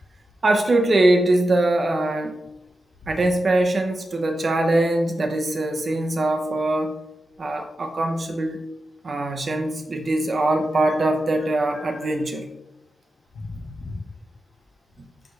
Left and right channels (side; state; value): both; normal; correlation 0.91